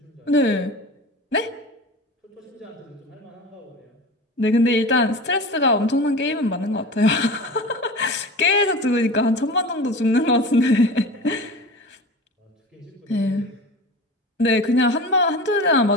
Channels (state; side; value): normal; both; correlation 0.33